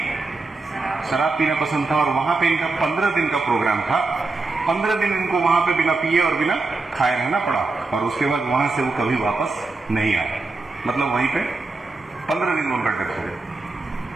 शराब पीना पसंद था। और वहां पे इनका 15 दिन का प्रोग्राम था। 15 दिन इनको वहां पे बिना पिए और बिना खाए रहना पड़ा, और उसके बाद वहां से वो कभी वापस नहीं आए। मतलब वहीं पे 15 दिन उनका डेथ हो गया।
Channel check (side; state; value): left; quieter; 3.6 dB